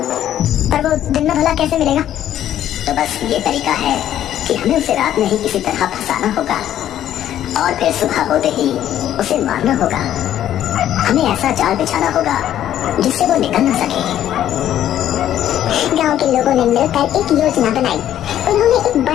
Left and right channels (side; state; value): right; quieter; 11.5 dB